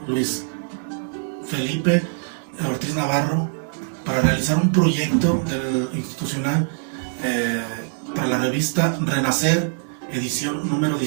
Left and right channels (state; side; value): silent; left; 64 dB below the other